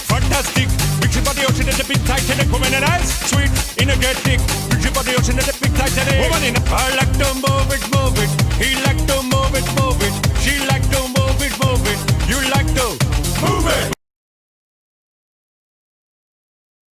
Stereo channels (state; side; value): identical; both; correlation 1.00